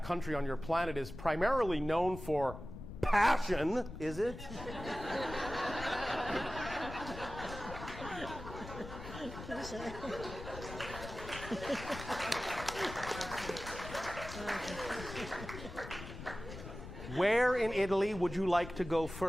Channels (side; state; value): left; noise; rumble, 11 dB below the sound